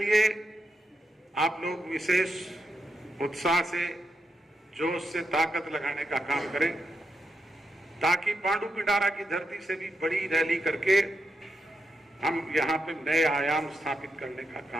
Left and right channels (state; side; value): normal; both; correlation 0.84